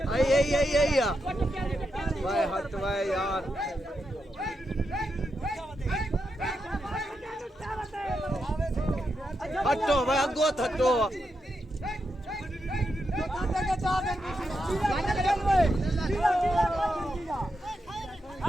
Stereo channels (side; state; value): both; normal; correlation 0.85